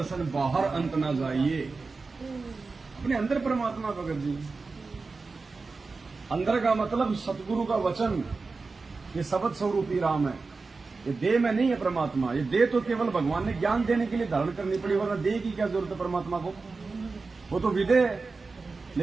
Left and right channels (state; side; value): quieter; left; 4.1 dB